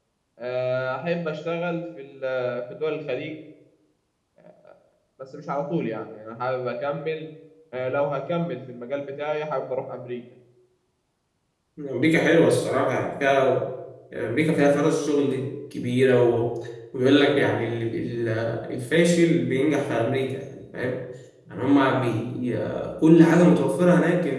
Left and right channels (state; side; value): identical; both; correlation 1.00